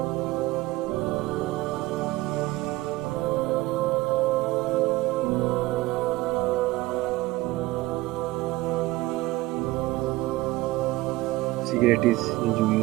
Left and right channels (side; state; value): left; quieter; 19.1 dB